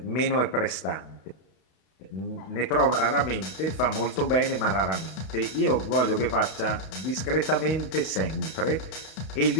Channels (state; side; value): late; right; 32 ms